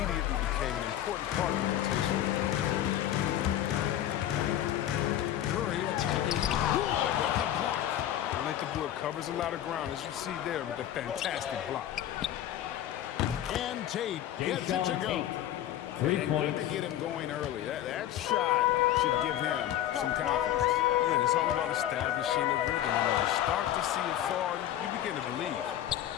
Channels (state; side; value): quieter; right; 12.1 dB